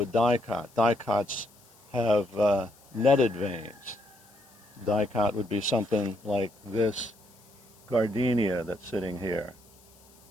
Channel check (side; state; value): left; noise; hiss, 28 dB below the sound